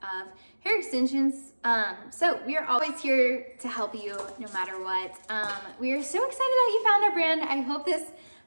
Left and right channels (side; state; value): both; inverted; correlation -1.00